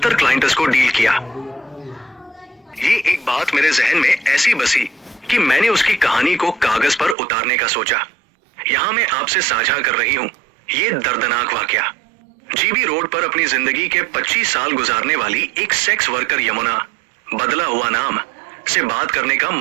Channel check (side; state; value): left; drops out; at 7.2 s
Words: क्लाइंट्स को डील किया। ये एक बात मेरे जहन में ऐसी बसी कि मैंने उसकी कहानी को कागज पर उतारने का सोचा। यहां मैं आपसे साझा कर रही हूं ये दर्दनाक वाकया। जीबी रोड पर अपनी जिंदगी के 25 साल गुजारने वाली एक सेक्स वर्कर यमुना, बदला हुआ नाम, से बात करने का